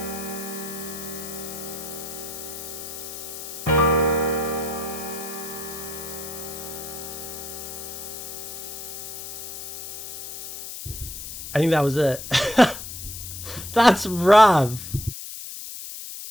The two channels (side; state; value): left; noise; hiss, 9 dB below the sound